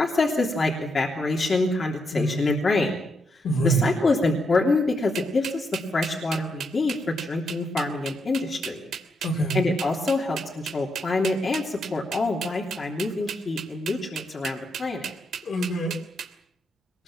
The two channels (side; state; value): both; normal; correlation 0.80